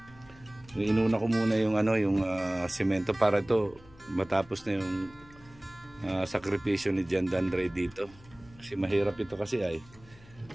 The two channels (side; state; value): left; noise; hum, 24 dB below the sound